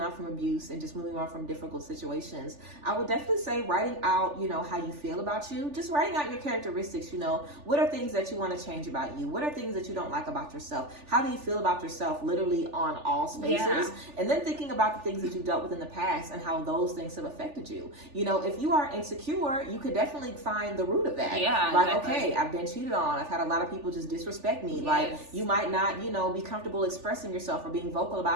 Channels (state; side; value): late; left; 3.4 ms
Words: from abuse and just moving on from difficult situations. I would definitely say writing out, how you feel about you, just writing out your characteristics. What are things that you want to change about you? What are things that you don't like about yourself? How do you feel about yourself literally on all spaces? And then thinking about the things that you dealt with in the past and how those things have affected you. If you are insecure, you could definitely find the root of that. Yeah, like, exactly. Okay, I've been cheated on. I've had a lot of people just disrespect me. Yes. Like, you might not, be comfortable expressing yourself or being vocal